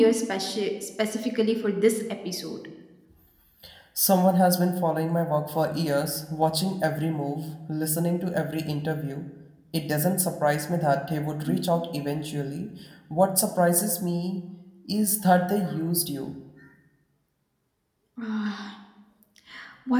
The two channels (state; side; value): identical; both; correlation 1.00